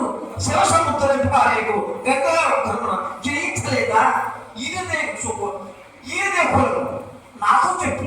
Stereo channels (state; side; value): identical; both; correlation 1.00